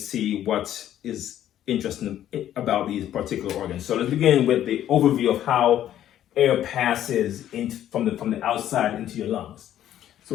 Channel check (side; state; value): right; quieter; 11.6 dB